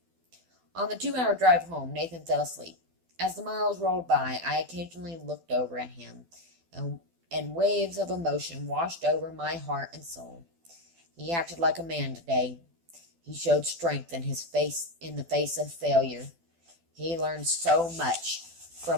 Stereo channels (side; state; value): left; late; 12 ms